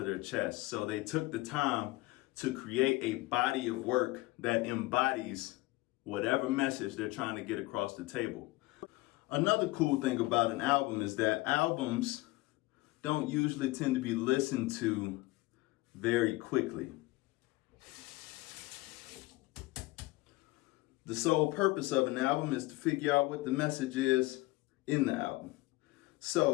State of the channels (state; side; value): quieter; right; 20.6 dB